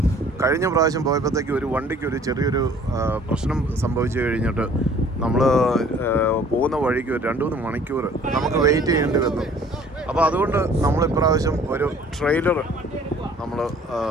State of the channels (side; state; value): both; normal; correlation 0.53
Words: കഴിഞ്ഞ പ്രാവശ്യം പോയപ്പോഴത്തേക്ക് ഒരു വണ്ടിക്ക് ഒരു ചെറിയൊരു പ്രശ്നം സംഭവിച്ചു കഴിഞ്ഞിട്ട് നമ്മൾ പോകുന്ന വഴിക്ക് ഒരു 2-3 മണിക്കൂർ നമുക്ക് വെയിറ്റ് ചെയ്യേണ്ടി വന്നു. അപ്പോൾ അതുകൊണ്ട് നമ്മൾ ഇപ്രാവശ്യം ഒരു ട്രെയിലർ നമ്മൾ